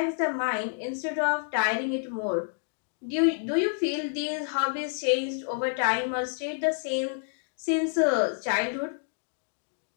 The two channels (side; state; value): right; silent; digital silence